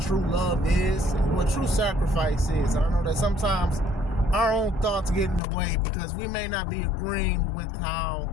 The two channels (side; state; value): right; drops out; at 5.4 s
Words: love is and what true sacrifice is. I know that sometimes our own thoughts get in the way because we may not be agreeing with how